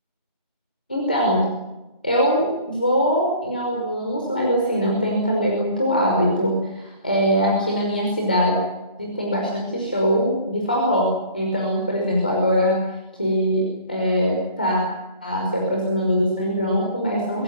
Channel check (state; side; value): inverted; both; correlation -0.48